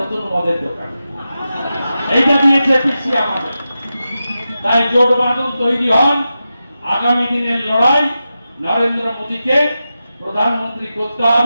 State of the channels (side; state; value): both; inverted; correlation -0.91